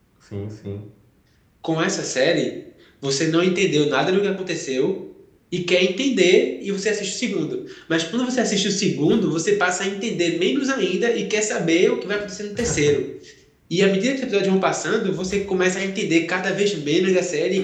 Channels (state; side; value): identical; both; correlation 1.00